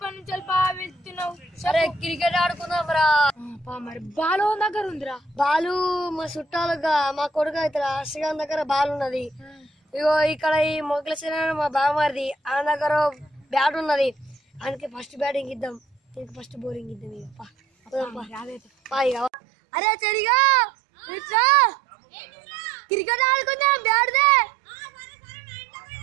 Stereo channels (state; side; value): drops out; left; at 19.3 s